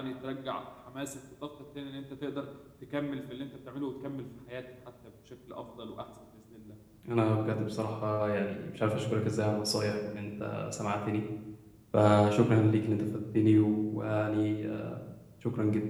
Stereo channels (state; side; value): identical; both; correlation 1.00